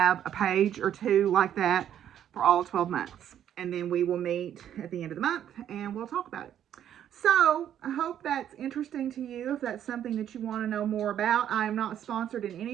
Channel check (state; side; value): quieter; left; 10.3 dB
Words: a page or two like that for all 12 months. And then we will meet at the end of the month and we'll talk about it. So I hope that's interesting to you. If that's something that you want to know more about, I am not sponsored in